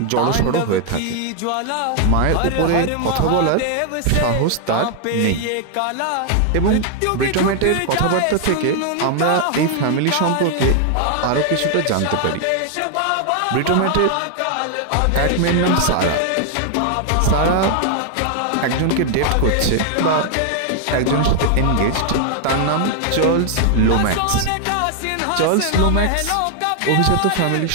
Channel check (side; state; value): both; different; correlation 0.00